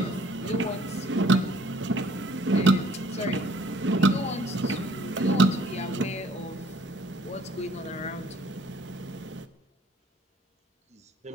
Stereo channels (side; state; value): both; normal; correlation 0.59